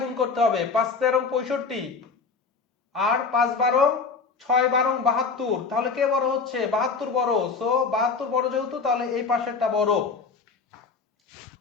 গুণ করতে হবে, 5 13 65 আর 5 12 6 12 72। তাহলে কে বড় হচ্ছে? 72 বড়। সো 72 বড় যেহেতু, তাহলে এই পাশেরটা বড়।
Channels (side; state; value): right; quieter; 4.9 dB